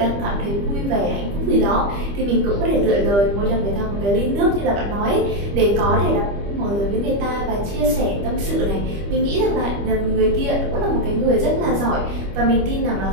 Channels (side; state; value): left; late; 25 ms